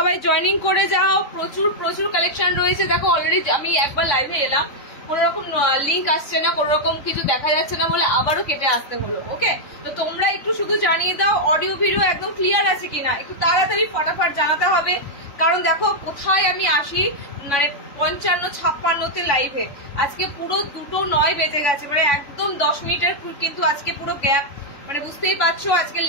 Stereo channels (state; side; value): late; right; 3.6 ms